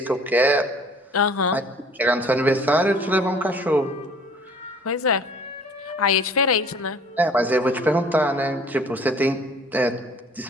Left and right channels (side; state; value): both; normal; correlation 0.51